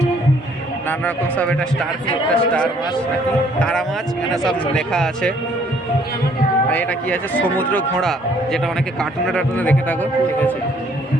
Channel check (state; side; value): normal; both; correlation 0.63